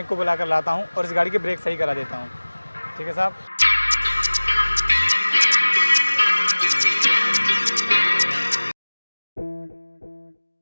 को बुला कर लाता हूँ और इस गाड़ी के ब्रेक सही करा देता हूँ। ठीक है साहब।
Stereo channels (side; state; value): both; inverted; correlation -1.00